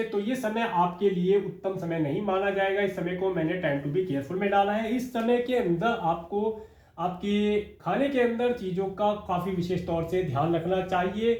तो ये समय आपके लिए उत्तम समय नहीं माना जाएगा। इस समय को मैंने टाइम टू बी केयरफुल में डाला है। इस समय के अंदर आपको आपके खाने के अंदर चीज़ों का काफ़ी विशेष तौर से ध्यान रखना चाहिए।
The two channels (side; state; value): both; identical; correlation 1.00